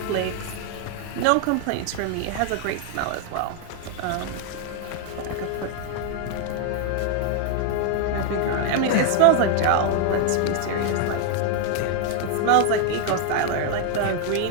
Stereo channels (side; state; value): both; different; correlation 0.01